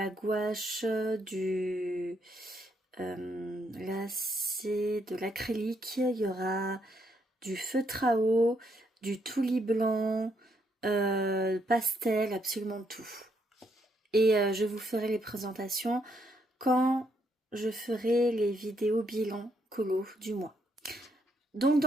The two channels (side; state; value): both; normal; correlation 0.74